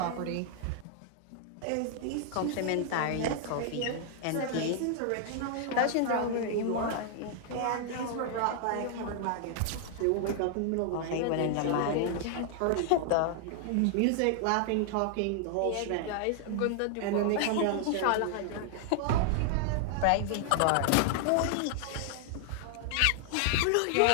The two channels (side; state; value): both; different; correlation 0.00